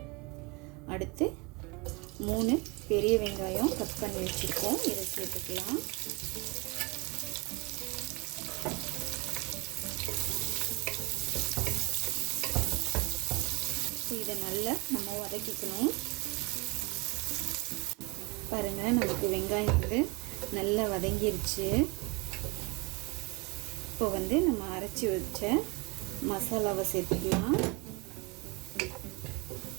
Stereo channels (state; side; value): quieter; left; 27.9 dB